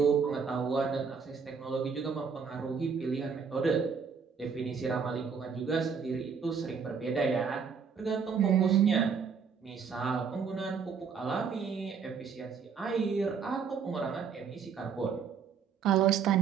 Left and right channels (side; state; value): left; quieter; 6.2 dB